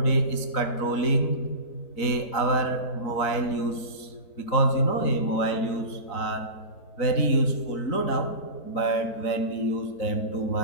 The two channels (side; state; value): right; late; 4.0 ms